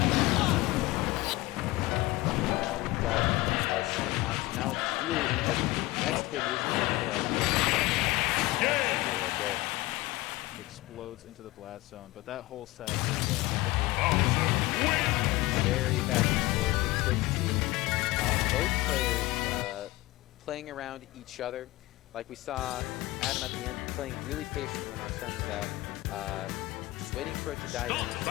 we've got our Sen out, so now it's really anybody's game. Next hit is gonna kill. Right there. Explodes into the blast zone, but that whole set is Very back and forth. It was great to see both players playing around each other. Like we saw Adam at the end playing really patient when our Sen was out, just waiting for it to die down so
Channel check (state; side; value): quieter; right; 19.6 dB